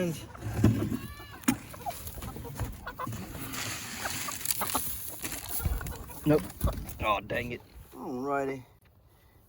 Nope. Oh, dang it. Alrighty.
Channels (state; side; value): identical; both; correlation 1.00